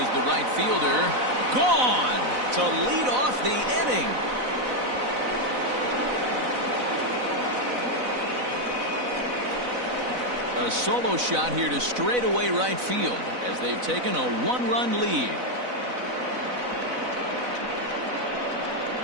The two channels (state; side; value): late; left; 4.0 ms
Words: the right fielder. Gone to lead off the inning. A solo shot here to straightaway right field as they've taken a 1-run lead.